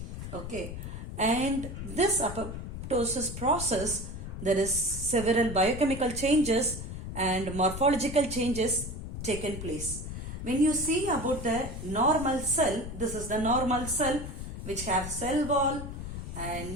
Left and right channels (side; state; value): left; noise; rumble, 8 dB below the sound